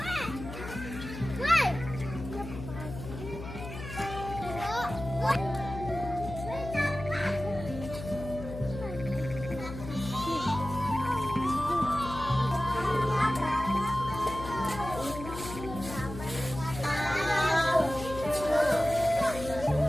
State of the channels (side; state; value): left; noise; hum, 10 dB below the sound